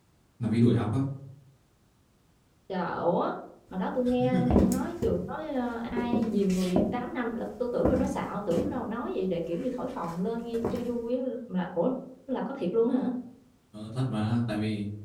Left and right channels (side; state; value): both; identical; correlation 1.00